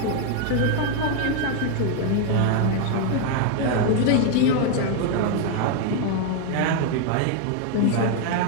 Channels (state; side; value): different; both; correlation 0.01